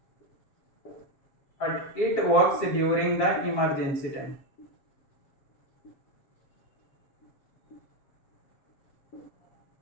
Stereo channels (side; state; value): right; late; 7.4 ms